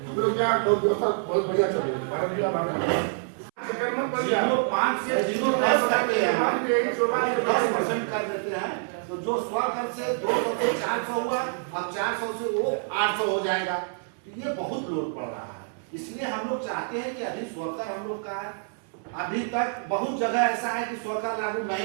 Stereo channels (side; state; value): left; silent; 60 dB below the other